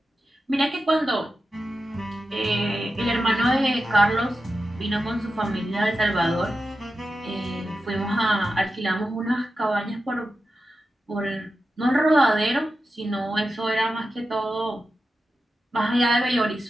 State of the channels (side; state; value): both; normal; correlation 0.91